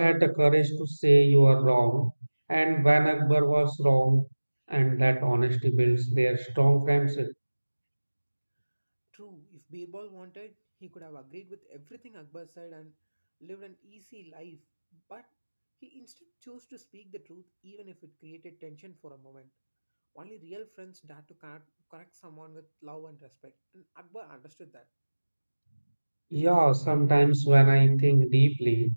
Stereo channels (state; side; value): inverted; both; correlation -1.00